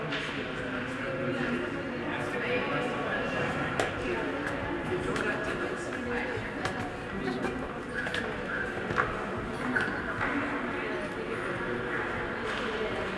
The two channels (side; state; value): both; identical; correlation 1.00